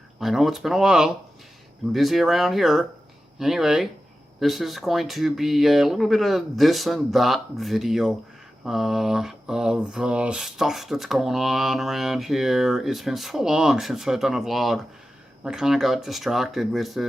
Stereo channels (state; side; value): normal; both; correlation 0.93